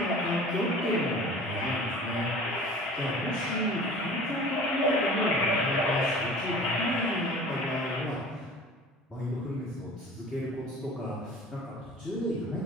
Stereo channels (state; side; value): normal; both; correlation 0.42